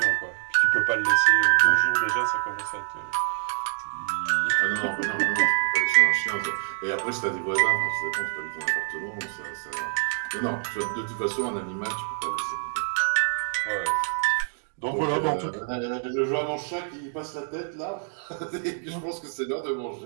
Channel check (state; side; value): silent; left; digital silence